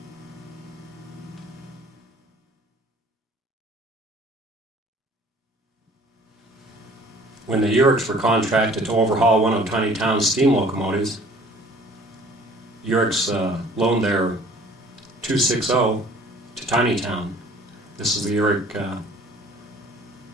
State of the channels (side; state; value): both; normal; correlation 0.52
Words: When the Uriks were contracted to overhaul one of Tiny Town's steam locomotives, Uriks loaned their 260 to Tiny Town. This is the Urik